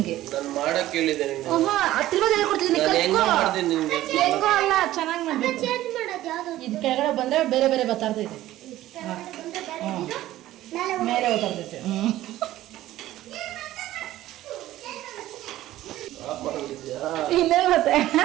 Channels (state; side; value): quieter; left; 14.8 dB